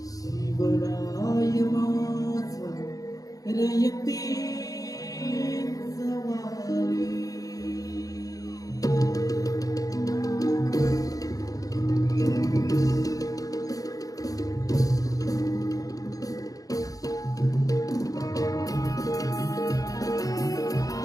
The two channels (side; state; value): right; late; 0.17 ms